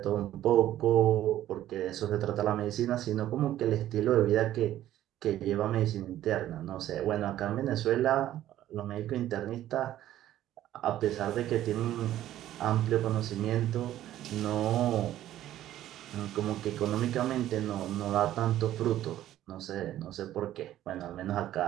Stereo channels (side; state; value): left; quieter; 13.0 dB